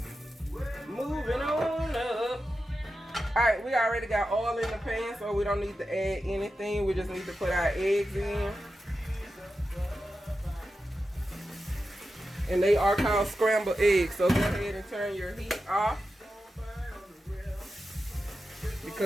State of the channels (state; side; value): normal; both; correlation 0.91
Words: Moving on up. Alright, we already got oil in the pan, so we don't need to add anything. We just need to put our eggs in. And they are called scrambled eggs, so go ahead and turn your heat off.